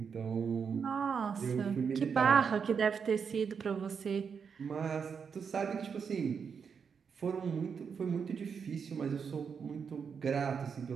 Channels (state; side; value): quieter; left; 6.4 dB